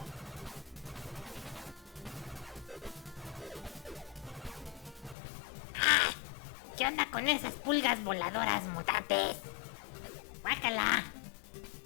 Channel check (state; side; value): drops out; right; at 5.2 s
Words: ¿Qué onda con esas pulgas voladoras mutantes? ¡Guácala!